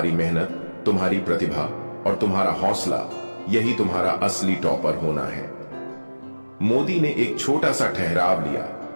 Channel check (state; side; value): inverted; both; correlation -1.00